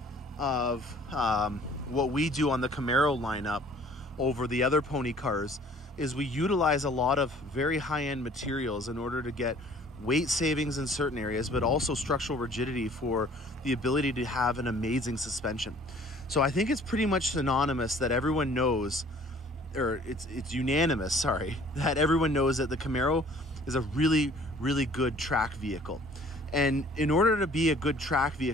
of what we do on the Camaro lineup over the other pony cars is we utilize a lot of very high-end materials in order to get weight savings in certain areas, but also structural rigidity for the ability to have an amazing suspension. So I think it's pretty much synonymous that everyone knows, or it's unanimous, sorry, that everyone knows that the Camaro is a really, really good track vehicle. And in order to be a good track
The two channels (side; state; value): both; normal; correlation 0.53